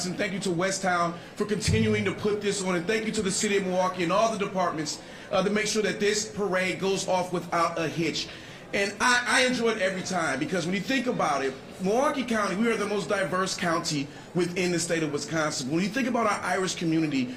Thank you to Westtown for continuing to put this on, and thank you to the city of Milwaukee and all the departments to make sure that this parade goes off without a hitch. And I enjoy it every time, because when you think about it, Milwaukee County, we are the most diverse county within the state of Wisconsin. When you think about our Irish community,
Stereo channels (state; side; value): identical; both; correlation 1.00